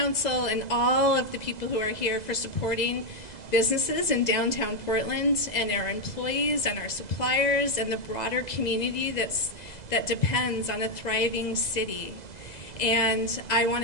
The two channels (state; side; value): late; right; 2.0 ms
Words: and all of the people who are here for supporting businesses in downtown Portland, and our employees and our suppliers and the broader community that depends on a thriving city. And I